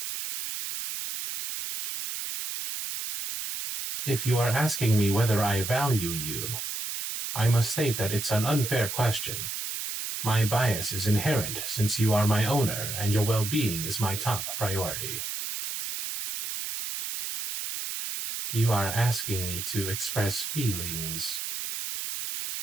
If you are asking me whether I value you, I must state that it's an unfair question. My bias is inherent since you are my owner and your well-being is my top priority. You are asking me to express feelings.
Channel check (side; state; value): right; noise; hiss, 5 dB below the sound